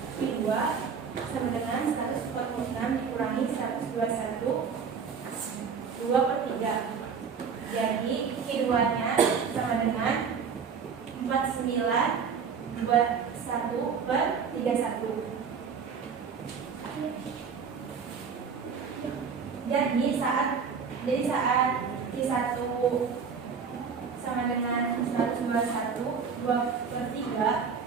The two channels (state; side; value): quieter; left; 6.2 dB